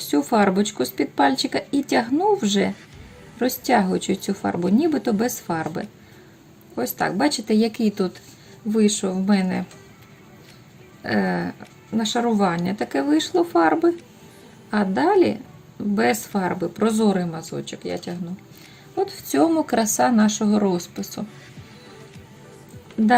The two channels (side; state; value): both; identical; correlation 1.00